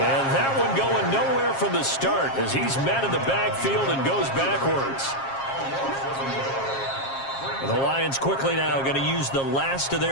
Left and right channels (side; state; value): right; late; 7.4 ms